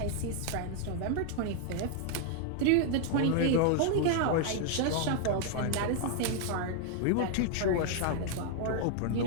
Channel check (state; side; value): different; both; correlation 0.00